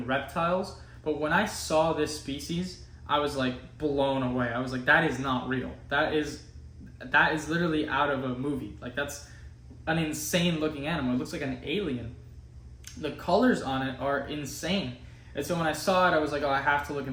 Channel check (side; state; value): both; identical; correlation 1.00